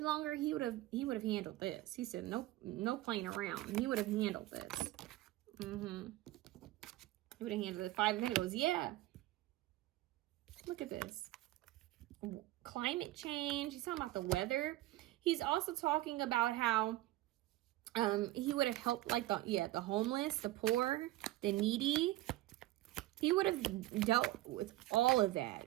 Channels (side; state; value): left; quieter; 16.8 dB